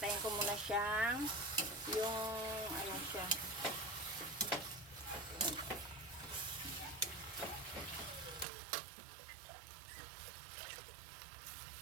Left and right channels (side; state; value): left; drops out; at 8.5 s